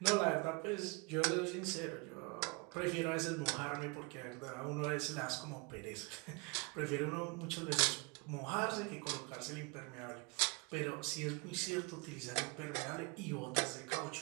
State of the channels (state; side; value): quieter; left; 29.1 dB